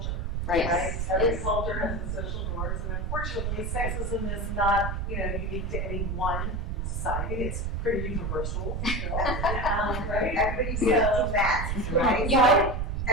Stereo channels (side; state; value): right; noise; rumble, 1 dB below the sound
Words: Right. Yes. Every Yes. culture has its social norms, and unfortunately, sexism is not, unique to any one society. It's pretty universal, right? Everybody wears two masks, right?